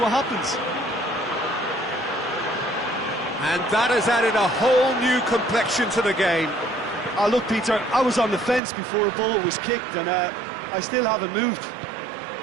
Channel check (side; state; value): left; drops out; at 8.6 s